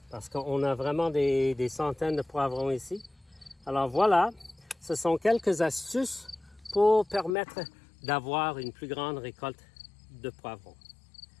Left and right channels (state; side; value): drops out; right; at 7.3 s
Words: Parce qu'on a vraiment des centaines de poivrons ici. Alors voilà, ce sont quelques astuces pour permettre d'avoir une plus grande récolte de poivrons.